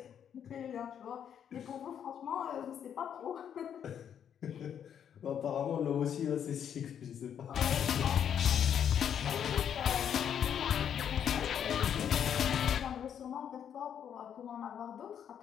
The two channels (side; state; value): right; quieter; 8.8 dB